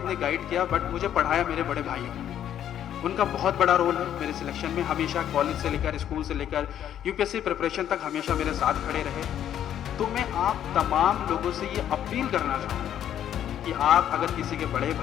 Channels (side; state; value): right; quieter; 10.4 dB